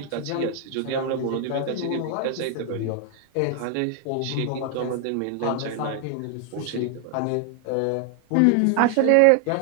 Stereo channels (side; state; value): both; different; correlation 0.00